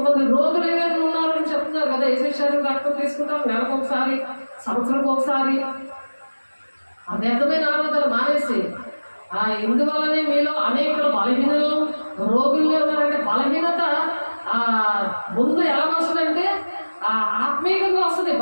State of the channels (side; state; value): both; inverted; correlation -1.00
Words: రోగులు ఏమైనా ఉన్నారని చెప్తున్నారు కదా, యేసు శరీరం రక్తం తీసుకుంటాం నెలకు ఒకసారి, సంవత్సరంకి ఒకసారి. ఆ వ్యర్థమైన ఆరాధన మానేసి ఇందువల్లనే మీలో అనేకలు బలహీనలు రోగుల్లో ఉన్నారంటే బలహీనత ముందు ఎలా వస్తుందంటే ఆత్మీయంగా వస్తుంది.